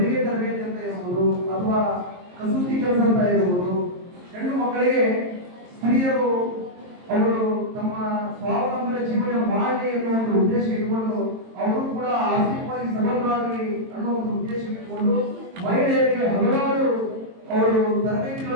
ತರಬೇತಿ ಅಂತ ಇರಬಹುದು ಅಥವಾ ಕಸೂತಿ ಕೆಲಸ ಅಂತ ಇರಬಹುದು. ಹೆಣ್ಣು ಮಕ್ಕಳಿಗೆ ಸ್ತ್ರೀಯರು ಅವರು ತಮ್ಮ ಸ್ವಾವಲಂಬನೆ ಜೀವನ ಮಾಡಲಿ ಅನ್ನೋ ಒಂದು ಉದ್ದೇಶ ಇಟ್ಟುಕೊಂಡು ಅವರು ಕೂಡ ಆರ್ಥಿಕವಾಗಿ ಸಬಲರಾಗಲಿ ಅನ್ನೋ ಒಂದು ಉದ್ದೇಶ ಇಟ್ಟುಕೊಂಡು ಮಹಿಳೆಯರಿಗೆ ಹಲವಾರು ಅವರು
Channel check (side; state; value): left; late; 22 ms